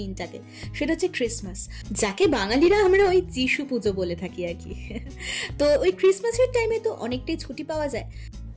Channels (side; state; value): both; identical; correlation 1.00